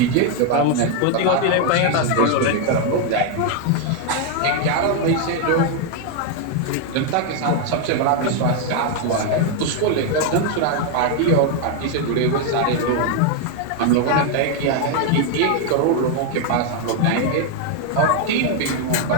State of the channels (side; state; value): both; different; correlation 0.01